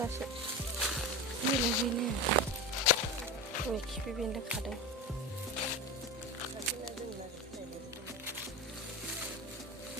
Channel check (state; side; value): normal; both; correlation 0.24